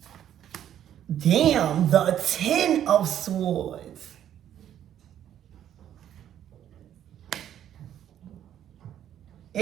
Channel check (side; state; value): left; quieter; 10.6 dB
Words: Damn, the Ten of Swords.